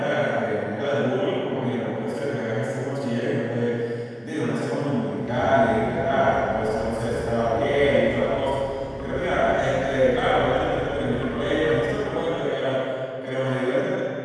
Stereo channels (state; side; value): identical; both; correlation 1.00